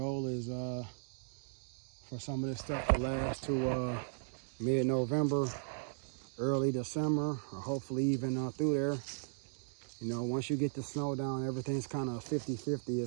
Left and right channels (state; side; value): silent; left; digital silence